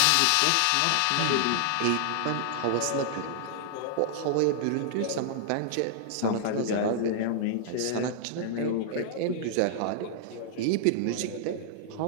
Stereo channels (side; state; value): both; different; correlation -0.01